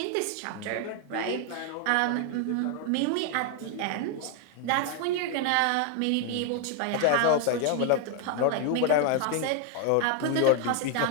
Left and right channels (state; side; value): different; both; correlation 0.00